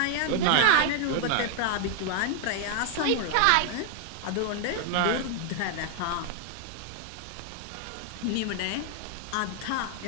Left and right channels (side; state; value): both; different; correlation 0.00